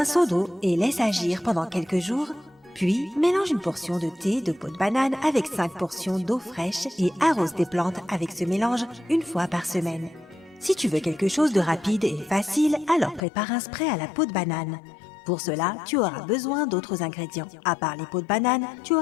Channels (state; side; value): drops out; right; at 13.2 s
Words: seau d'eau et laisse agir pendant quelques jours. Puis, mélange une portion de thé de peau de banane avec 5 portions d'eau fraîche et arrose tes plantes avec ce mélange une fois par semaine. Si tu veux quelque chose de rapide et facile, alors prépare un spray à la peau de banane. Pour cela, tu auras besoin d'autres ingrédients. À part les peaux de banane, tu